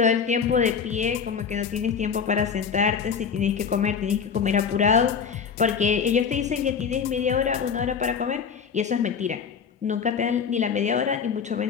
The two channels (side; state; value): right; quieter; 6.6 dB